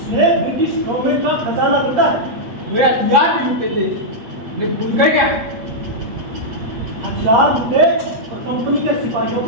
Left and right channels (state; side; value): late; left; 8.3 ms